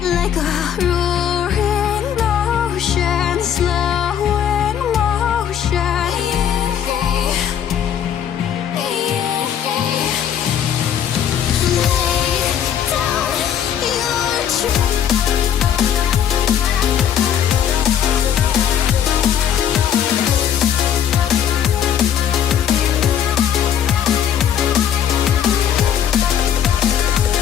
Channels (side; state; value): right; quieter; 9.3 dB